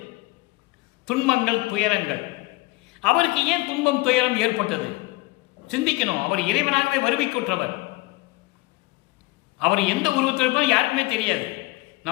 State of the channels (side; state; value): right; quieter; 21.9 dB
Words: துன்பங்கள், துயரங்கள். அவருக்கு ஏன் துன்பம் துயரம் ஏற்பட்டது சிந்திக்கணும். அவர் இறைவனாகவே வருவிக்குற்றவர். அவர் எந்த உருவத்தில் இருப்பது யாருக்குமே தெரியாது.